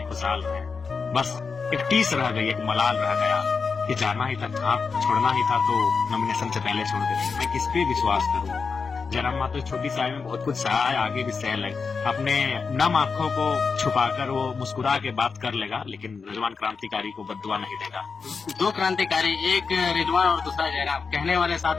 खुशहाल रहे। बस एक टीस रह गई, एक मलाल रह गया कि जाना ही था, छोड़ना ही था तो नॉमिनेशन से पहले छोड़ देते। मैं किस पे विश्वास करूं? जयराम महतो छोटी सी आयु में बहुत कुछ सहा है, आगे भी सह ले। अपने नम आंखों को छुपाकर वो मुस्कुरा के बात कर लेगा, लेकिन रिजवान क्रांतिकारी को बद्दुआ नहीं देगा। दो क्रांतिकारी, एक रिजवान और दूसरा जयराम, कहने वाले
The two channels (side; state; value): right; quieter; 5.1 dB